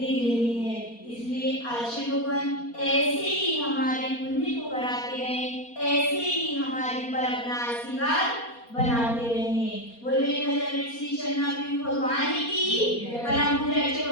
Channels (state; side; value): late; right; 4.2 ms